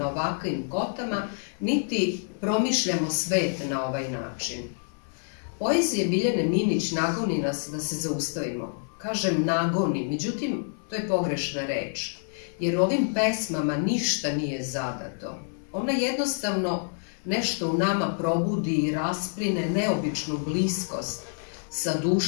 ovakvim kotama, niti promišljamo svet na ovaj način. Poezija Biljane Minić nagoni nas da se zaustavimo. Kažem nagoni, međutim, to je pogrešna reč, jer ovim pesmama ništa nije zadato. Ona jednostavno nešto u nama probudi i raspline neobičnu bliskost sa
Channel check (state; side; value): silent; right; 60 dB below the other